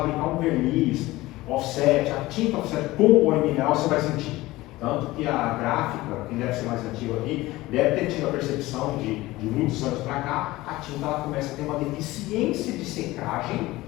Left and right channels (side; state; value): right; quieter; 18.7 dB